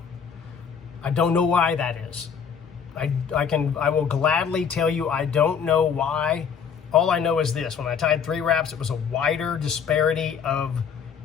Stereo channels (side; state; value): right; quieter; 6.9 dB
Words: I don't know why that is. I will gladly tell you I don't know why. All I know is this: when I tied 3 wraps, it was a wider disparity of